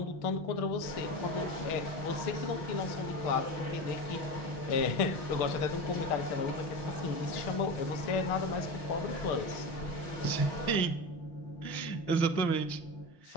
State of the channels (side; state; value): right; late; 6.2 ms